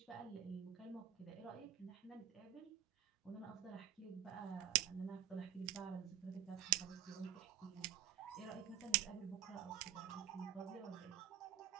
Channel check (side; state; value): left; quieter; 10.7 dB